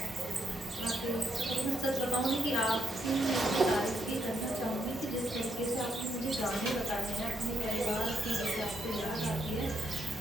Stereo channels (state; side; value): normal; both; correlation 0.76